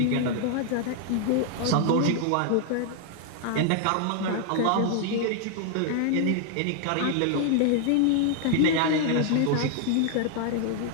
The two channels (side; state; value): both; different; correlation 0.00